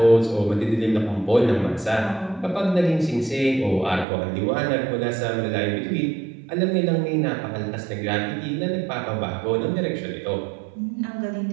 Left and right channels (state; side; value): drops out; left; at 4.0 s